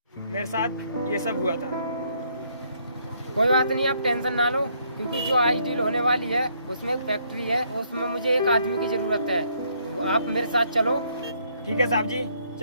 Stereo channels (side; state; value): both; inverted; correlation -0.69